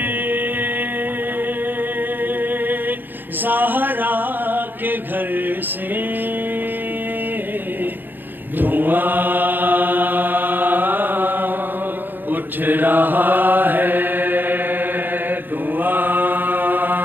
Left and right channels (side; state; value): left; late; 0.091 ms